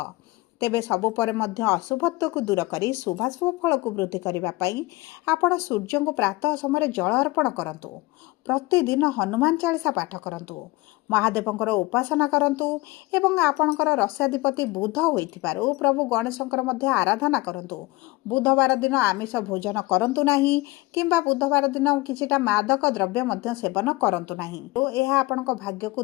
ତେବେ ସବୁ ପରେ ମଧ୍ୟ ଅଶୁଭତ୍ୱକୁ ଦୂର କରି ଶୁଭାଶୁଭ ଫଳକୁ ବୃଦ୍ଧି କରିବା ପାଇଁ ଆପଣ ସୂର୍ଯ୍ୟଙ୍କୁ ପ୍ରାତଃ ସମୟରେ ଜଳ ଅର୍ପଣ କରନ୍ତୁ। ପ୍ରତିଦିନ ହନୁମାନ ଚାଳିଶା ପାଠ କରନ୍ତୁ, ମହାଦେବଙ୍କର ଉପାସନା କରନ୍ତୁ ଏବଂ ଆପଣଙ୍କର ରାଶ୍ୟାଧିପତି ବୁଧ ହୋଇଥିବାରୁ ପ୍ରଭୁ ଗଣେଶଙ୍କର ମଧ୍ୟ ଆରାଧନା କରନ୍ତୁ। ବୁଧବାର ଦିନ ଆମିଷ ଭୋଜନ କରନ୍ତୁ ନାହିଁ କିମ୍ବା ବୁଧବାର ଦିନ କିଛିଟା ମାଦକ ଦ୍ରବ୍ୟ ମଧ୍ୟ ସେବନ କରନ୍ତୁ ନାହିଁ। ଏହା ଆପଣଙ୍କ ଭାଗ୍ୟକୁ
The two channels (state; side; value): quieter; right; 21.4 dB